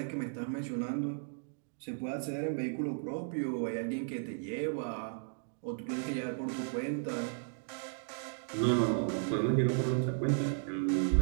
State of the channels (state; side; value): silent; left; digital silence